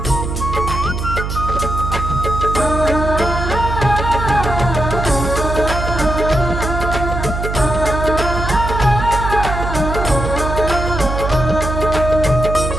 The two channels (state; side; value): noise; right; hum, 4 dB below the sound